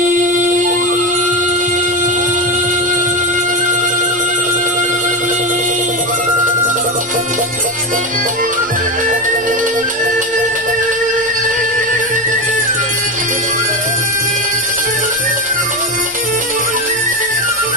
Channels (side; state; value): both; normal; correlation 0.18